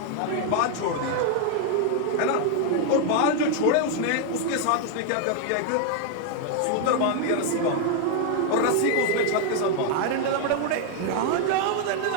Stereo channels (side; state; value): both; different; correlation 0.00